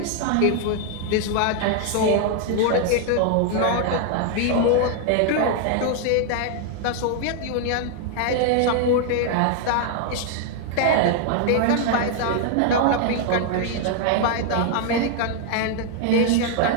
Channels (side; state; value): both; different; correlation 0.00